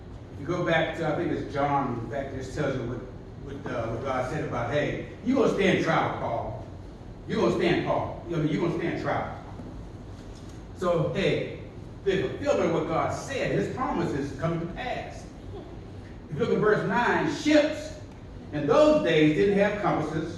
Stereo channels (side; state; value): both; identical; correlation 1.00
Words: You go back to, I think it's John, back this tells you what God said about, hey, you're going to stand trial, Paul. You're going to stand, Paul. You're going to stand trial. So, hey, the fulfillment of what God said, his promises come to pass. If you look at verse 9, ships in those days didn't have